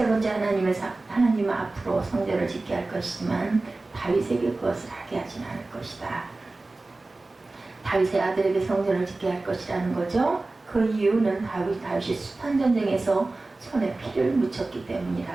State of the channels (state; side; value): quieter; left; 3.2 dB